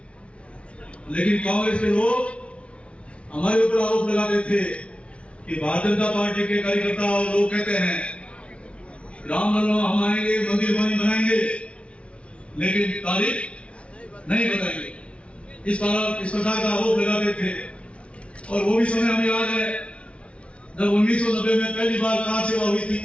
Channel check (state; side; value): late; right; 0.061 ms